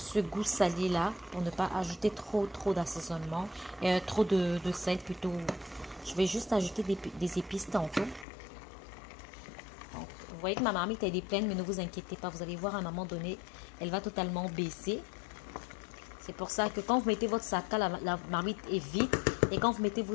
goût salé là, pour ne pas ajouter trop d'assaisonnement, trop de sel plutôt. Je vais juste ajouter des épices tantôt. Donc, vous voyez que ma marmite, elle est pleine, mais ne vous inquiétez pas. Vous allez voir à un moment donné, elle va totalement baisser. C'est pour ça que quand vous mettez votre sac, la marmite est vide. Et quand vous mettez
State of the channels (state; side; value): drops out; right; at 8.2 s